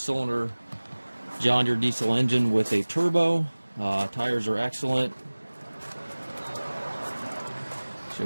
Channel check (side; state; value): both; inverted; correlation -1.00